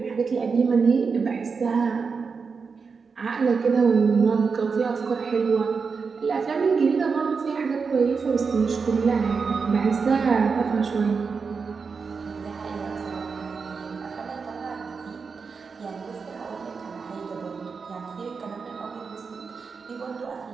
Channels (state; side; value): quieter; left; 5.2 dB